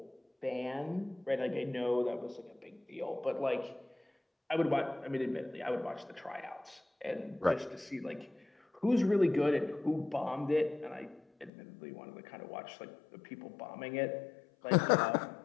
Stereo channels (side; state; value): right; drops out; at 11.5 s